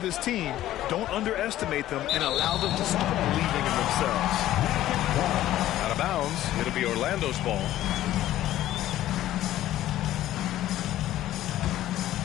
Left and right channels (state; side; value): quieter; right; 13.7 dB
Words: team. Don't underestimate them and allow them to start believing in themselves. Out of bounds. It'll be Orlando's ball.